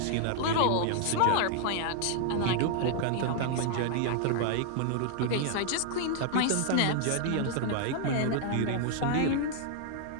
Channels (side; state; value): both; different; correlation -0.01